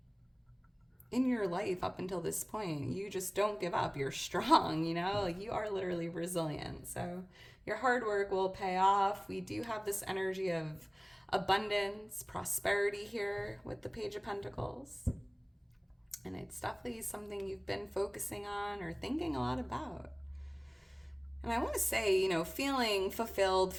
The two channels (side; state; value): both; identical; correlation 1.00